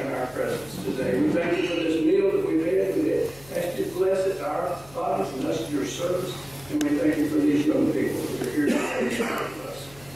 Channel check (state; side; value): noise; left; hum, 23 dB below the sound